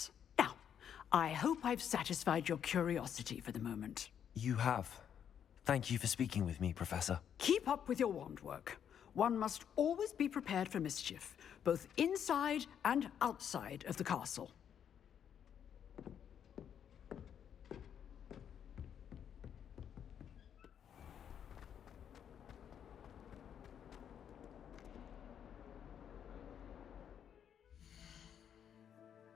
Now, I hope I've satisfied your curiosity for the moment. You have. Thank you for speaking with me, Professor. Keep up with your wand work. One must always be prepared for mischief, both inside and outside of the castle.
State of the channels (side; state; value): right; quieter; 8.7 dB